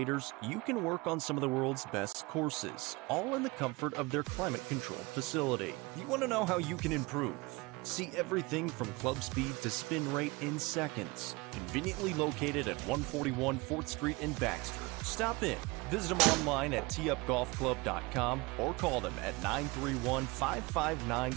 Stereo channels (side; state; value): left; quieter; 24.4 dB